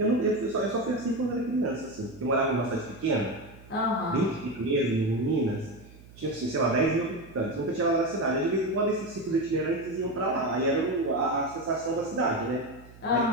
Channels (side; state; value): right; noise; hum, 21 dB below the sound